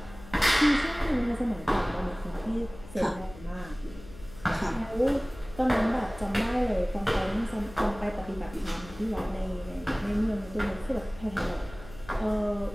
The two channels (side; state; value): left; noise; hum, 17 dB below the sound